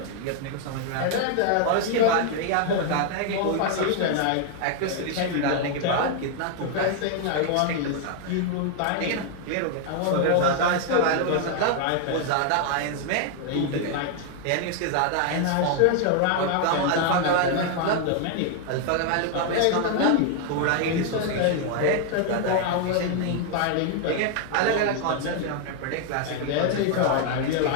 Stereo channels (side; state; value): both; different; correlation 0.00